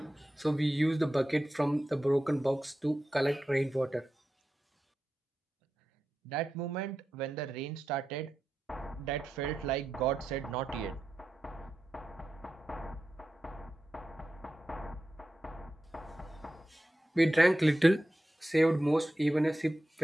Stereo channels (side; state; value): both; normal; correlation 0.91